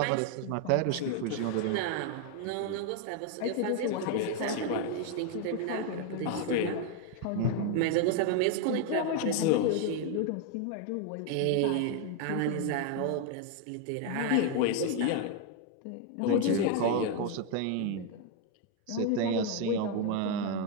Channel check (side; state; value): both; different; correlation 0.01